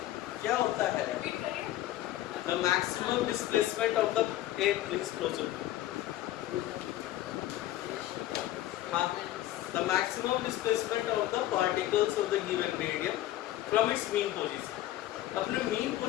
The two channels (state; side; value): quieter; right; 14.4 dB